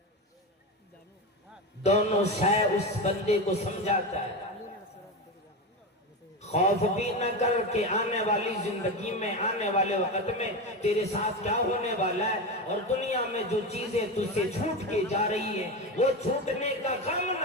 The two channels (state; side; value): normal; both; correlation 0.19